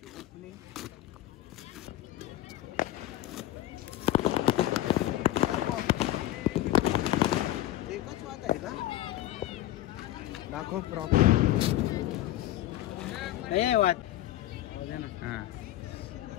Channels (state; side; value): quieter; right; 14.3 dB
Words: ओपनिंग. एकच वाद आहे का? दाखव प्रॉपर. वाद हां